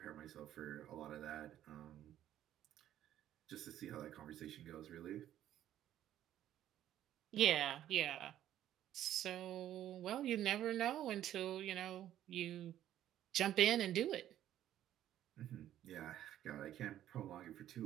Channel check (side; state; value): left; quieter; 12.0 dB